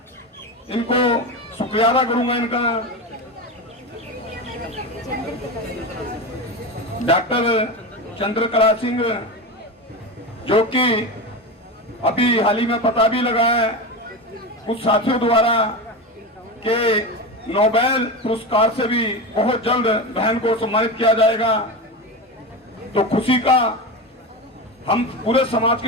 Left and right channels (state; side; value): normal; both; correlation 0.21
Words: इनको शुक्रिया अदा करूंगा इनका। डॉक्टर चंद्रकला सिंह, जो कि अभी हाल ही में पता भी लगा है कुछ साथियों द्वारा कि नोबेल पुरस्कार से भी बहुत जल्द बहन को सम्मानित किया जाएगा, तो खुशी का हम पूरे समाज